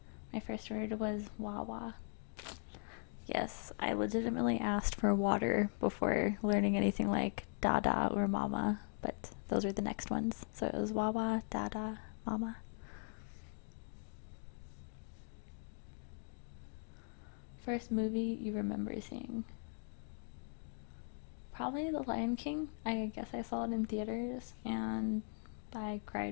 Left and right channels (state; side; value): silent; right; 51 dB below the other